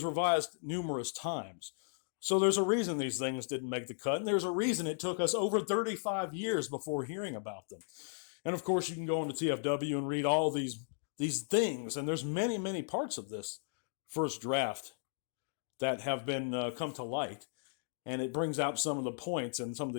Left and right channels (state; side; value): silent; right; digital silence